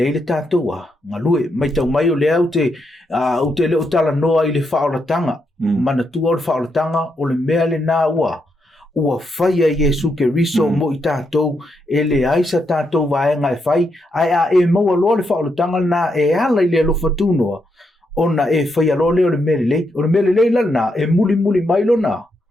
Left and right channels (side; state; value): both; normal; correlation 0.81